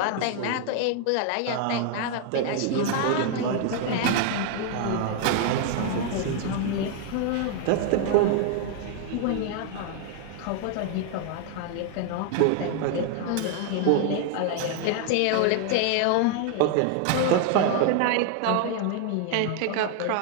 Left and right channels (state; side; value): different; both; correlation 0.00